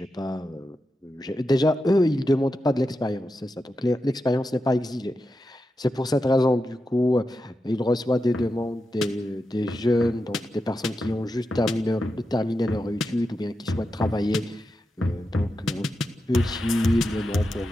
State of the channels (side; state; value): both; normal; correlation 0.89